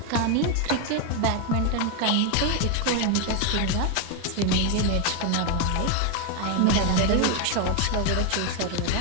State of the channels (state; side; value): different; both; correlation 0.01